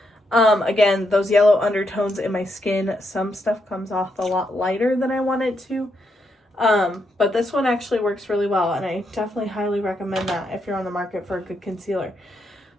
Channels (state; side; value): normal; both; correlation 0.79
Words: Again, those yellow undertones in my skin, some stuff comes off a lot lighter than I want it to. But this one actually works really well, and I definitely highly recommend that if you're on the market for a good concealer.